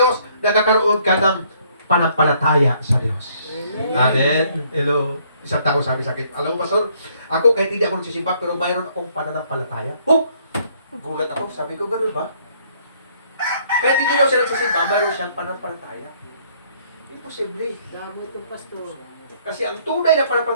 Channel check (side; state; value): both; inverted; correlation -0.65